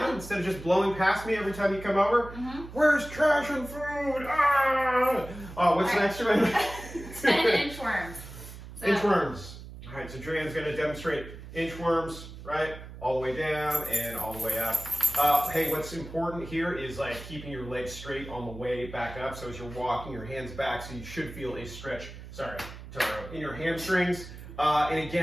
Instead of just blowing past me every time you come over? Where's trash and food? Ah! Oh, what's the next one? 10 inchworms. Inchworms. All right, so JoAnn's going to demonstrate inchworms, right? All the way down and all the way up. Hey, what's important here is like keeping your legs straight on the way back up. So as you're walking, your hands back, so you should feel a stretch, sorry, Totoro, in your hamstrings. And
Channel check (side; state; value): right; noise; hum, 14 dB below the sound